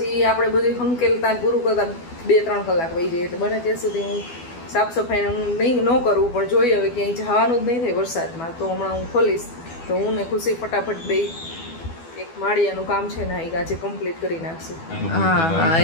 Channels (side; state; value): right; late; 12 ms